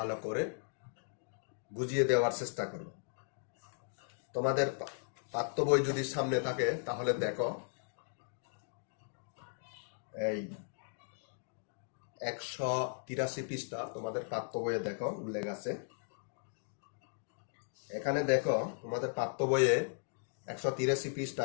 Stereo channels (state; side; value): silent; right; digital silence